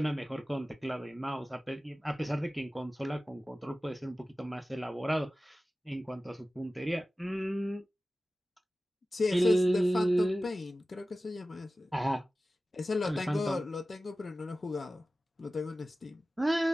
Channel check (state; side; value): normal; both; correlation 0.96